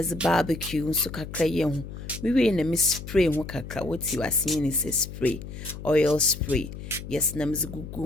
barbecue nso kakra ye ho. Mi we na mi spray ho kakra. What you are seeing is a spray, oil spray. Yes, na meze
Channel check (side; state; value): left; noise; hum, 11 dB below the sound